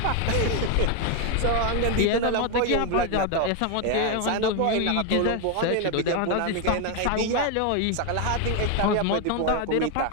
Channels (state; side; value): different; both; correlation 0.01